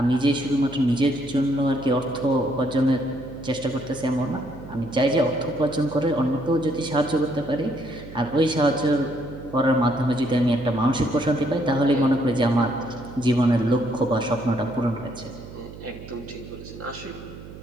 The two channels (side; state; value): right; noise; hum, 15 dB below the sound